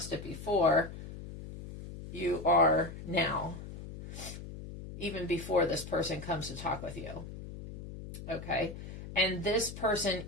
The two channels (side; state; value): left; noise; hum, 11 dB below the sound